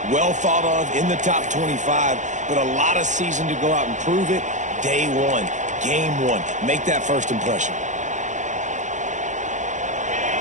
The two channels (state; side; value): late; left; 0.35 ms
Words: well thought of in the top 25, but a lot of season to go out and prove it. Day one, game one. Make that first impression.